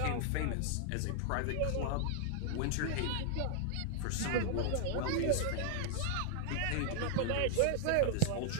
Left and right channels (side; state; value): both; different; correlation 0.00